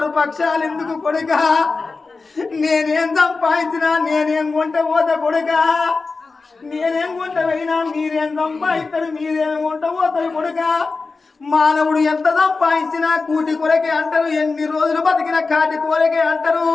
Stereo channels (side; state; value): right; quieter; 4.1 dB